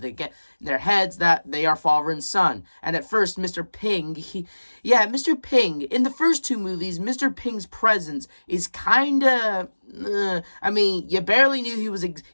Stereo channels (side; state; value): both; inverted; correlation -1.00